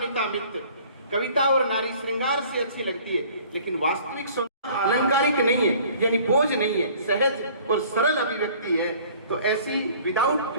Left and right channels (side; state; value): both; inverted; correlation -0.51